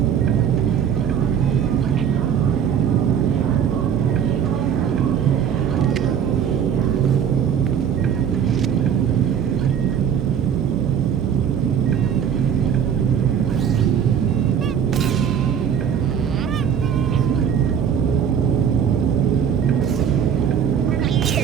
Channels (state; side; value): quieter; left; 8.3 dB